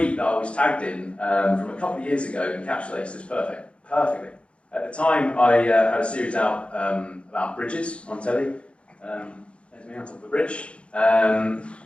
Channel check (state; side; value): late; right; 0.059 ms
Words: that I was tagged in from a couple of years ago encapsulates this perfectly. At the time, I had a series out about bridges on telly. There's me on top of the bridge.